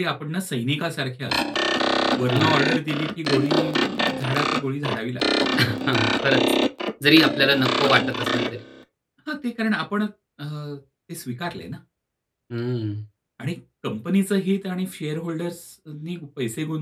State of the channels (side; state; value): both; identical; correlation 1.00